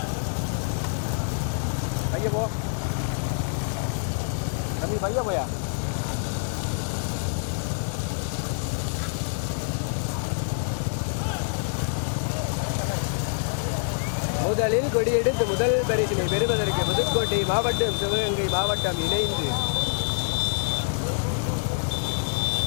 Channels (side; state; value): right; silent; digital silence